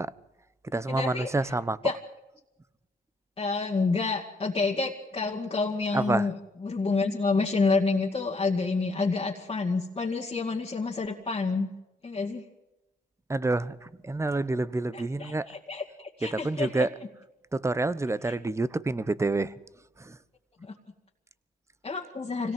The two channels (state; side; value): normal; both; correlation 0.72